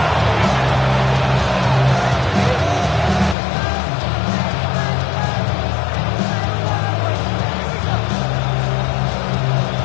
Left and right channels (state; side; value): drops out; right; at 3.4 s